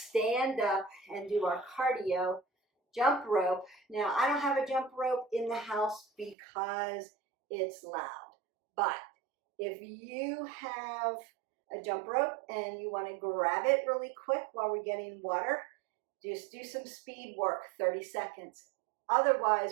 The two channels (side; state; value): left; drops out; at 6.4 s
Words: up and do our cardio jump rope. Now, I don't have a jump rope in the house because it's loud. But if you have a jump rope and you want to grab it really quick while we're getting water, just do some speed work, 30 seconds.